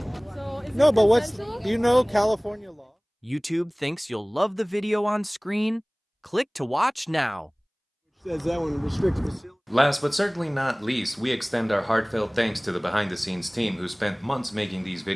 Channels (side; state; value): both; identical; correlation 1.00